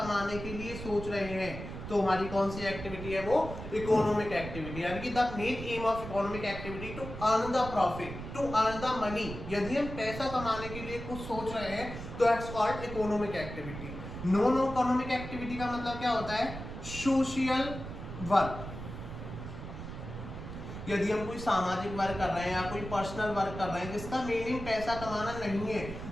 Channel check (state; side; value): noise; right; rumble, 9 dB below the sound